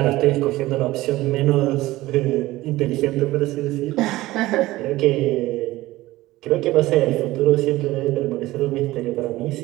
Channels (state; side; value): quieter; left; 17.7 dB